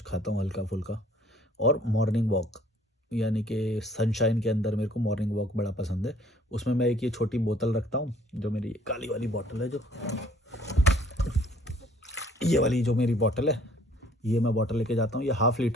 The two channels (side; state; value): both; normal; correlation 0.58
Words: खाता हूँ हल्का फुल्का। और मॉर्निंग वॉक, यानी कि सनशाइन के अंदर मेरे को मॉर्निंग वॉक बड़ा पसंद है। उसमें मैं एक ये छोटी बोतल रखता हूँ, जो मेरी काली वाली बोतल है, जो ये वाली जो मेरी बोतल है, ये मैं बोतल लेके जाता हूँ। ये 1/2